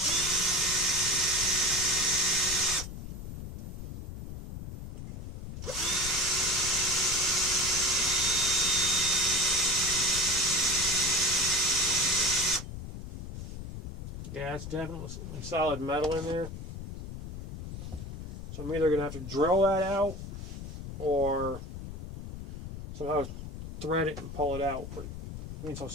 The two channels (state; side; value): noise; left; rumble, 9 dB below the sound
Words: Yeah, it's definitely solid metal in there. So I'm either going to have to drill that out or somehow thread it and pull it out. But being so